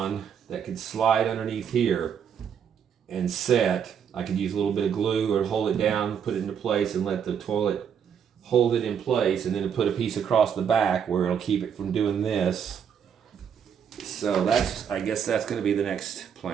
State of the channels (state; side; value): quieter; left; 7.8 dB